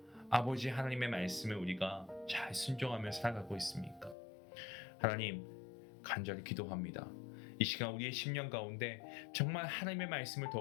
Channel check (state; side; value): drops out; right; at 4.2 s